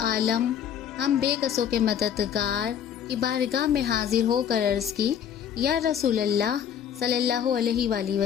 ہم بے کسوں کے مددگار کی بارگاہ میں حاضر ہو کر عرض کی، یا رسول اللہ صلی اللہ علیہ وآلہ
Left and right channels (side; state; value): right; quieter; 8.9 dB